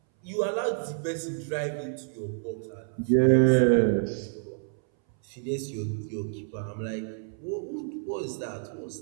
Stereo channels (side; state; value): left; silent; 59 dB below the other